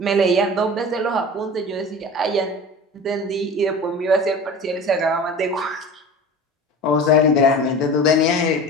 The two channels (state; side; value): normal; both; correlation 0.36